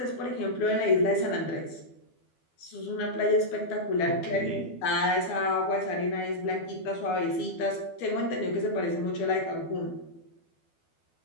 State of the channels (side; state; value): right; late; 12 ms